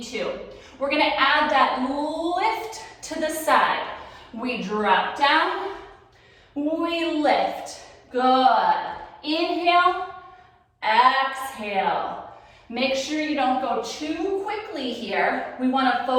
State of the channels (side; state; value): both; identical; correlation 1.00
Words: to. We're gonna add that lift to the side. We drop down, we lift. Good. Inhale, exhale. Make sure you don't go too quickly here. We wanna